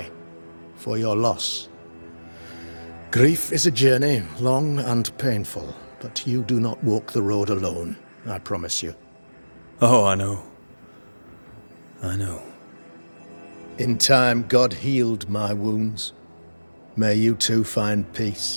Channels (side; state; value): both; inverted; correlation -1.00